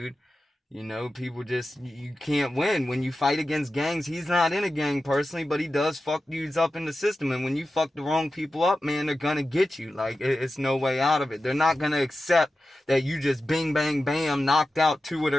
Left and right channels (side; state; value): both; normal; correlation 0.93